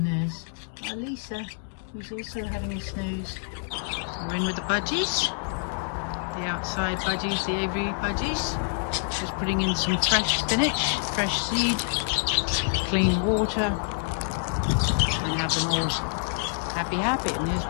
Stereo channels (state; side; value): silent; right; 60 dB below the other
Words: there's our Lisa, who's also having a snooze. We're in with the Budgies. The outside Budgies, the aviary Budgies. Just putting in some fresh spinach, fresh seed, clean water, and have them all happy. And there's